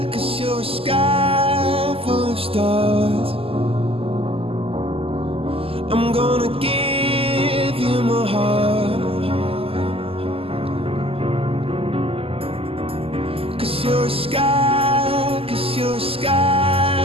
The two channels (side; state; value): left; late; 0.28 ms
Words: 'cause you're a sky full of stars. I'm gonna give you my heart, 'cause you're a sky